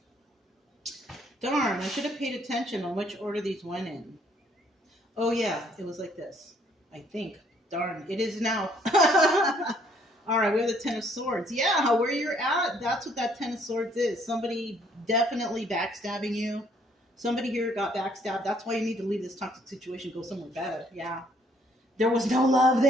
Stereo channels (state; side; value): normal; both; correlation 0.64